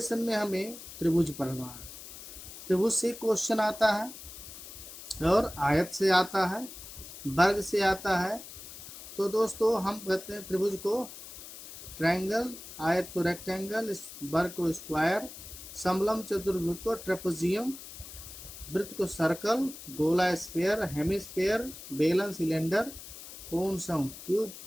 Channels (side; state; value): left; noise; hiss, 14 dB below the sound